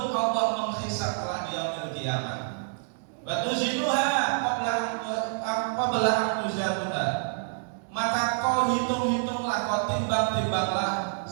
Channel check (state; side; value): silent; left; digital silence